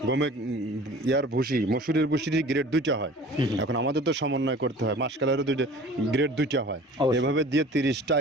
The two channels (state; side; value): normal; both; correlation 0.44